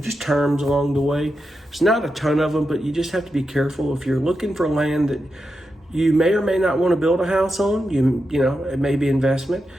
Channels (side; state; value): both; normal; correlation 0.88